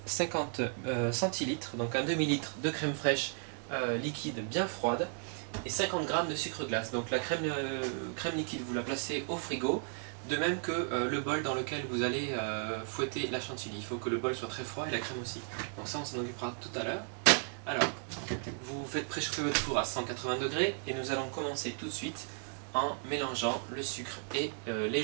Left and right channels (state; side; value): silent; left; 55 dB below the other